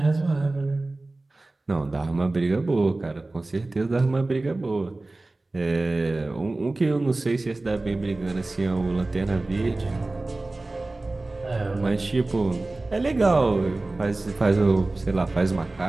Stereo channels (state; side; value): quieter; left; 3.0 dB